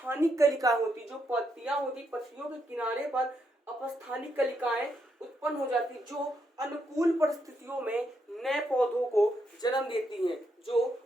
कलिकाएं होती, जो पत्तियां होती, पत्तियों के किनारे पर अपस्थानिक कलिकाएं उत्पन्न हो जाती, जो अनुकूल परिस्थितियों में नए पौधों को जन्म देती हैं, जो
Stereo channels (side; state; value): both; normal; correlation 0.79